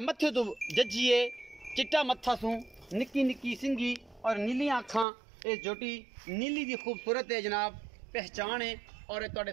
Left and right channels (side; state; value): left; drops out; at 5.1 s